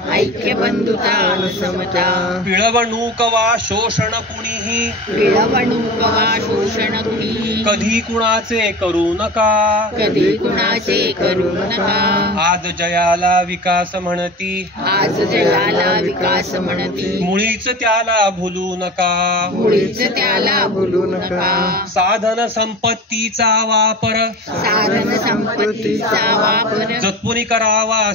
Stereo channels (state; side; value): normal; both; correlation 0.33